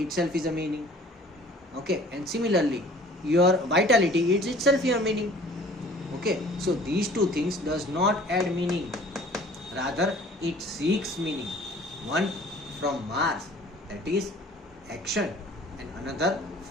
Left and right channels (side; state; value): both; normal; correlation 0.50